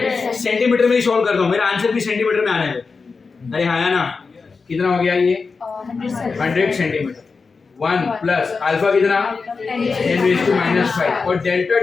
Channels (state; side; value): quieter; right; 4.7 dB